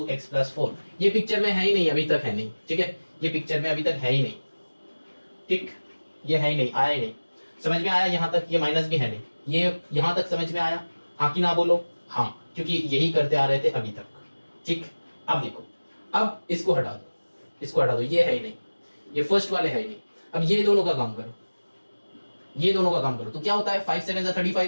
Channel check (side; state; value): both; inverted; correlation -1.00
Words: x plus 4। ये पिक्चर में है ही नहीं, अभी तक है नहीं। ठीक है, ये पिक्चर में अभी तक है ही नहीं, ठीक, ये है ही नहीं, आया ही नहीं। समझ में आया यहाँ तक? ये माइनस भी है नहीं, ये यहाँ तक समझ में आया, हाँ कि ना बोलो? हाँ, क्योंकि यही करते आ रहे थे अभी तक। ठीक, अब देखो, अब इसको हटा दो, इसको हटा दो, ये है ही नहीं, ये फर्स्ट वाले है ही नहीं। अब ये दोनों का काम करो, ये दोनों का काम करो, तो क्या होता है, 5 7